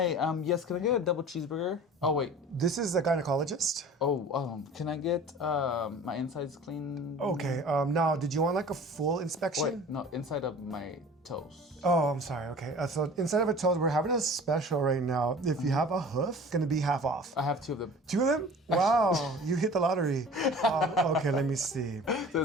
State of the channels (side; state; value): both; normal; correlation 0.43